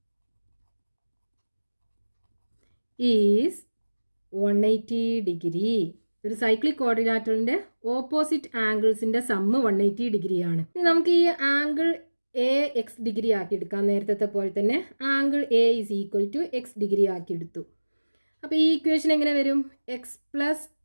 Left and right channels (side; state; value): both; inverted; correlation -1.00